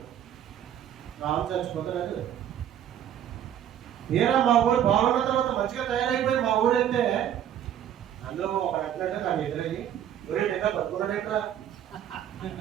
రామ్ చచ్చిపోతాడు. తీరా మా ఊరు బాగున్న తర్వాత మంచిగా తయారైపోయి మా ఊరు వెళ్తే అందులో ఒక అంటున్నాడు నాకు ఎదురయ్యి, ఊరే ఇంకా బతుకున్నాడేట్రా.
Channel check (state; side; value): quieter; left; 10.3 dB